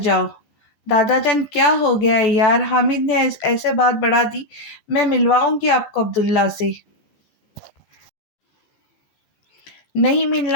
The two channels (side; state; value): right; late; 15 ms